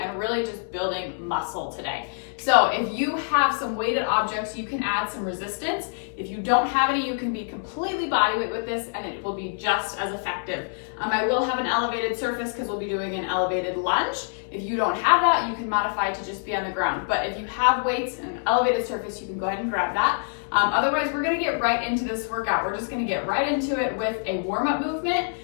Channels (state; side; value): silent; right; digital silence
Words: really just building muscle today. So if you have some weighted objects, you can add some resistance. If you don't have any, you can be completely bodyweight with this and it will be just as effective. I will have an elevated surface because we'll be doing an elevated lunge. If you don't have that, you can modify to just be on the ground. But if you have weights and an elevated surface, you can go ahead and grab that. Otherwise, we're gonna get right into this workout. We're just gonna get right into it with a warm-up movement